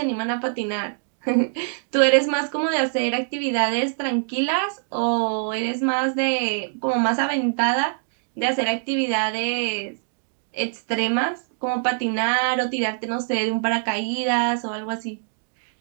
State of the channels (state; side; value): silent; left; digital silence